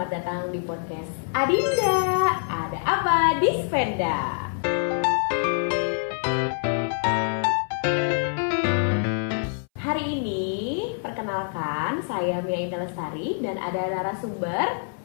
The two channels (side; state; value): right; silent; 61 dB below the other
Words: datang di podcast Adinda. Ada apa di Spenda? Hari ini perkenalkan, saya Mia Indah Lestari dan ada narasumber